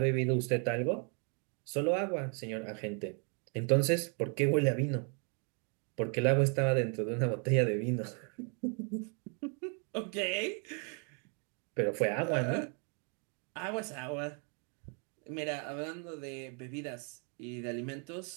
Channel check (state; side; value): quieter; left; 38.9 dB